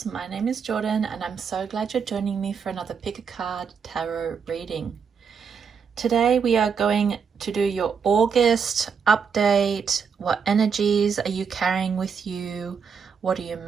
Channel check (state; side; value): quieter; left; 6.3 dB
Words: my name is Jordan and I'm so glad you're joining me for another Pick a Card Tarot reading. Today we are going to do your August update. What energies are you carrying with you? What are you